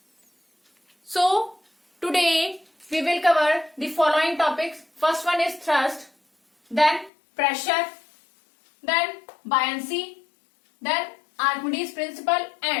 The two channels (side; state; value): right; drops out; at 7.1 s